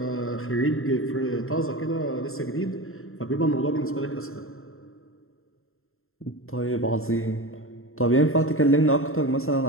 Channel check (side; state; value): right; late; 0.61 ms